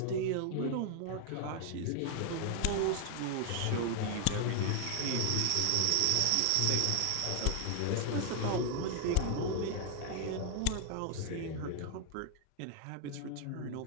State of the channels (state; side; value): different; both; correlation 0.00